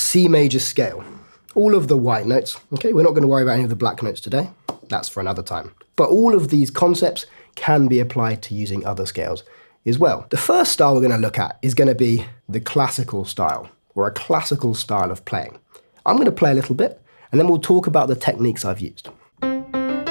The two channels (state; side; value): inverted; both; correlation -1.00